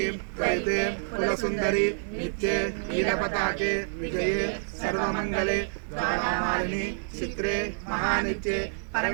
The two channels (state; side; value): silent; left; digital silence